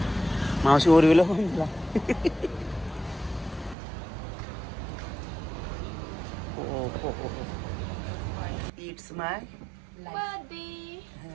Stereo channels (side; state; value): left; drops out; at 3.8 s